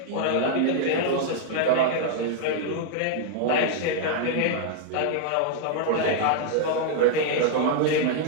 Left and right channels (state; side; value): different; both; correlation -0.01